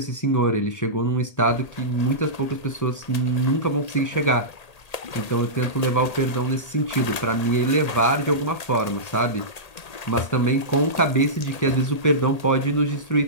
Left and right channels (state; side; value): late; right; 1.8 ms